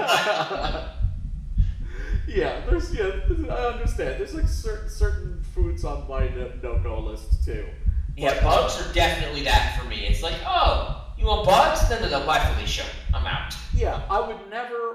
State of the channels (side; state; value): both; identical; correlation 1.00